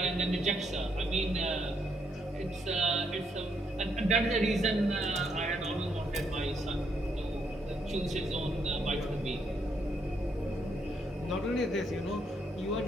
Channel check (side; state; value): both; normal; correlation 0.74